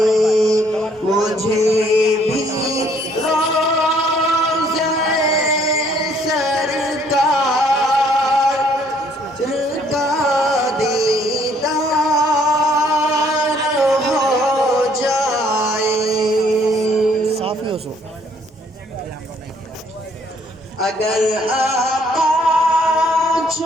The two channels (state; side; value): normal; both; correlation 0.64